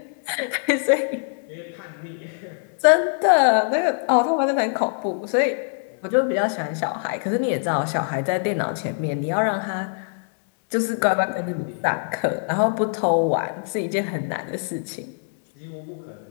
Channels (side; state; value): right; silent; 63 dB below the other